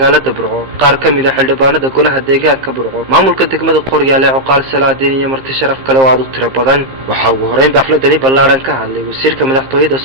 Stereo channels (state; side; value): late; left; 15 ms